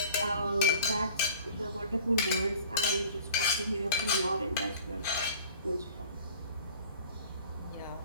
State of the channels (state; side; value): inverted; both; correlation -0.47